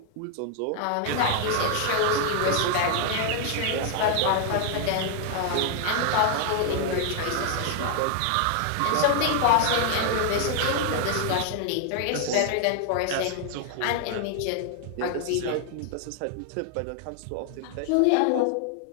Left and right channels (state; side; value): different; both; correlation 0.00